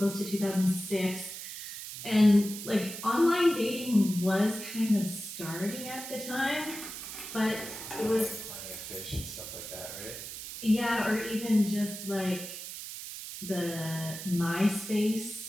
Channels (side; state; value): right; noise; hiss, 9 dB below the sound